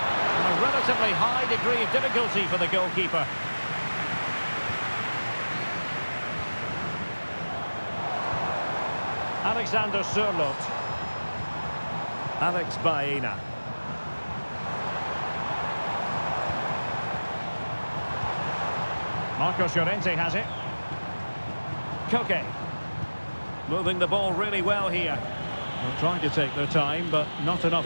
relatively high degree of difficulty for the goalkeeper. Alexander Sørloth. Alex Baena. Marcos Llorente has it. Koke. Moving the ball really well here. They're trying to take their time, but not enough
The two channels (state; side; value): inverted; both; correlation -1.00